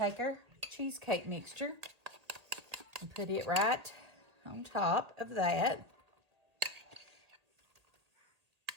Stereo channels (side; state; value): left; late; 1.8 ms